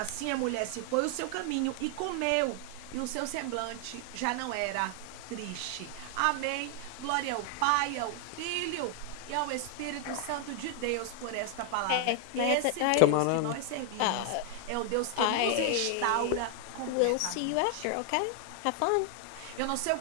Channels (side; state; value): both; different; correlation 0.00